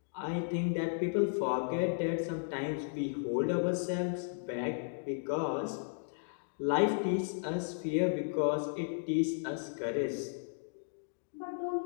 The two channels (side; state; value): right; silent; digital silence